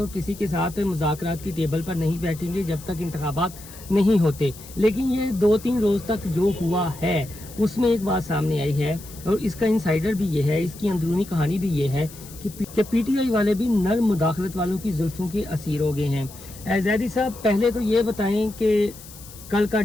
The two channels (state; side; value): noise; left; hiss, 18 dB below the sound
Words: किसी के साथ मुज़ाकरात की टेबल पर नहीं बैठेंगे जब तक इंतखाबात नहीं होते, लेकिन ये 2-3 रोज़ तक जो हुआ है उसमें एक बात सामने आई है और इसका इंसाइडर भी ये है, इसकी अंदरूनी कहानी भी ये है कि पीटीआई वाले भी नर मुदाखलत वालों की जुल्फों के असीर हो गए हैं। ज़ैदी साहब, पहले तो ये बताएं कि कल का